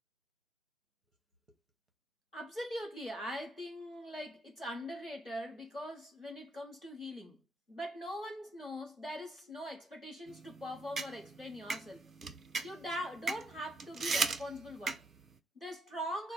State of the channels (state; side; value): normal; both; correlation 0.75